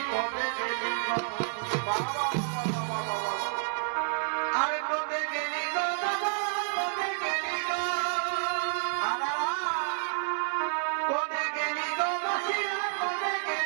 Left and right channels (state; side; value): silent; left; 58 dB below the other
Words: কবে গেলি গো বাবা আরে কবে গেলি গো বাবা কবে গেলি গো কবে গেলি গো বসিয়া কবে